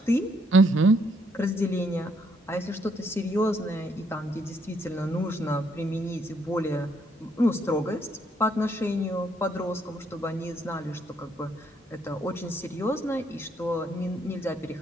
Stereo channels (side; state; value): both; normal; correlation 0.71